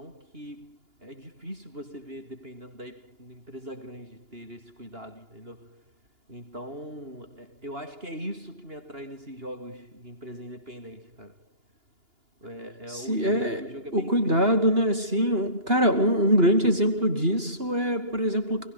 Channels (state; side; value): late; left; 2.9 ms